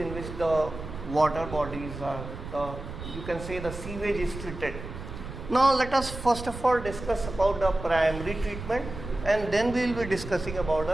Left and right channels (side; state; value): right; noise; rumble, 10 dB below the sound